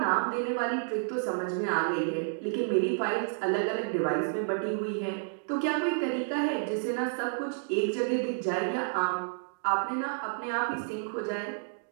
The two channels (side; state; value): left; silent; digital silence